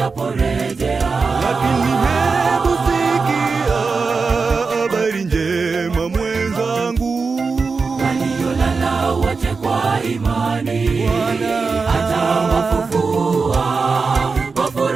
lakini hebu sikia habari njema mwenzangu, waliolala wote kwa imani atawafufua. Kwa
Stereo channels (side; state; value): left; quieter; 4.6 dB